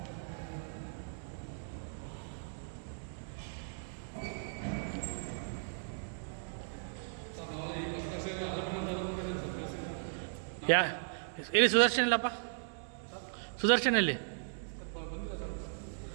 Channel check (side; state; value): left; silent; digital silence